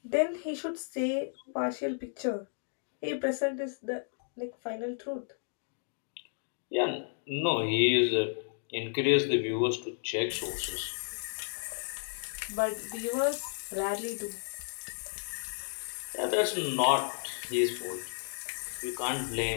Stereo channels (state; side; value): silent; right; digital silence